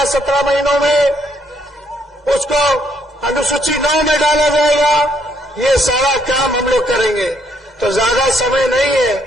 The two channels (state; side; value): normal; both; correlation 0.71